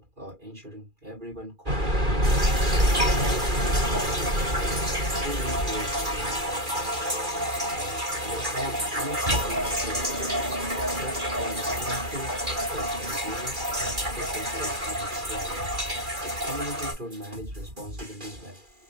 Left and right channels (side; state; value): left; late; 2.4 ms